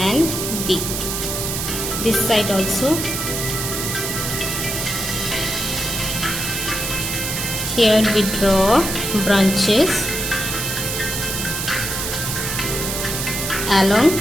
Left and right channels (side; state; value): right; noise; hiss, 3 dB below the sound